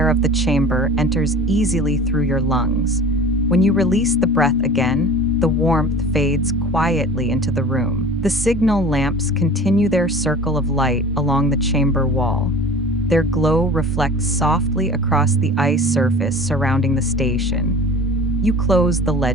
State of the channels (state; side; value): normal; both; correlation 0.41